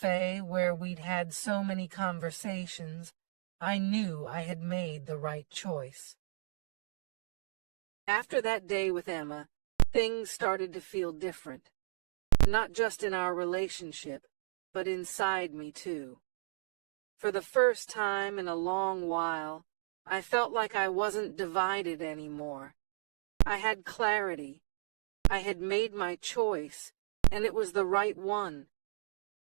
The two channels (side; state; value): left; silent; digital silence